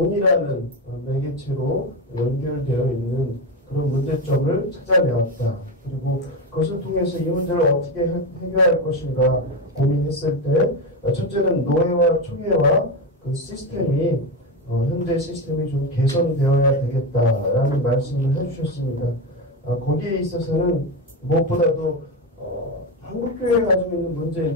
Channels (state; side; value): normal; both; correlation 0.15